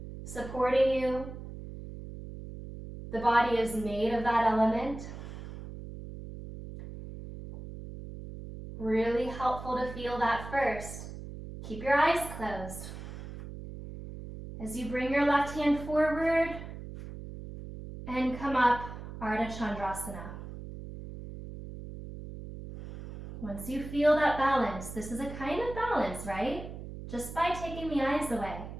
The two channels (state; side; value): noise; right; hum, 11 dB below the sound